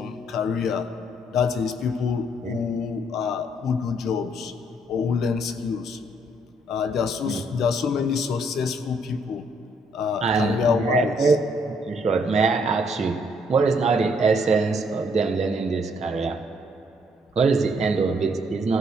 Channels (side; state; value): both; normal; correlation 0.68